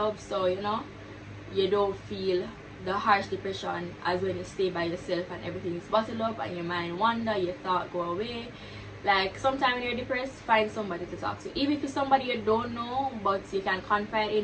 so, you know, you don't feel the harsh depression as when you stay by yourself and everything is bottled up and your mind wander, your thought go away. Like, sometimes when you're depressed, find somebody to talk to. Even if it's somebody you don't know, but you can confide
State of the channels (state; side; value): identical; both; correlation 1.00